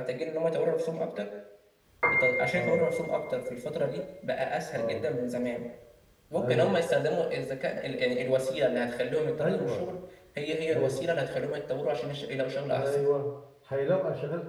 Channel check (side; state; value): both; identical; correlation 1.00